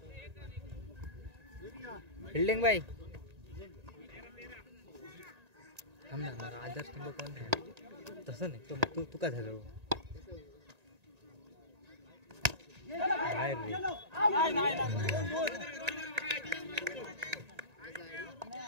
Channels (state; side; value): late; left; 1.9 ms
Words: बिल्डिंग भाई थांब ना मला आदर्श टिंब कोण आहे तसं नाही तू तू का झालं बाहेर